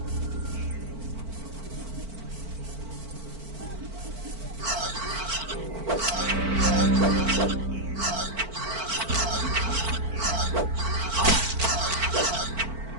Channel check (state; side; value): late; left; 4.5 ms